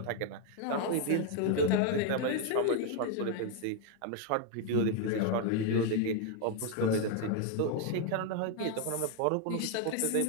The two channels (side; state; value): both; different; correlation 0.00